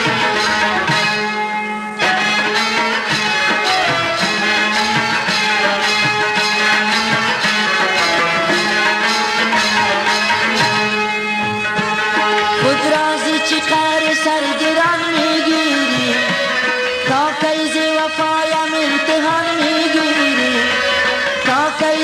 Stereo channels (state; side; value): identical; both; correlation 1.00